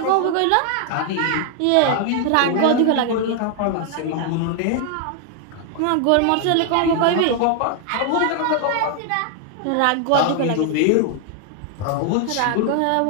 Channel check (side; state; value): both; different; correlation 0.00